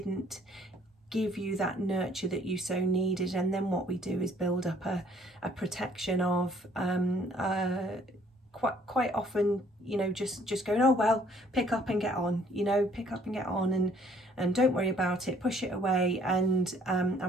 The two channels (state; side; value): normal; both; correlation 0.61